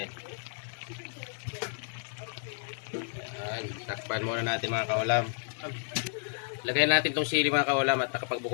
Yan. Takpan muna natin mga kaulam. Lagyan natin itong sili mga kaulam at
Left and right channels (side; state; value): right; silent; digital silence